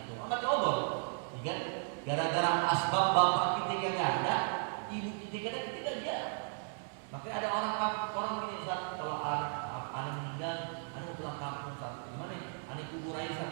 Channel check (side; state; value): left; silent; 54 dB below the other